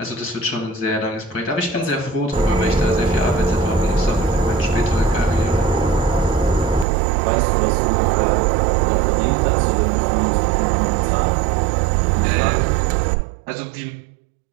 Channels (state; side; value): drops out; left; at 6.9 s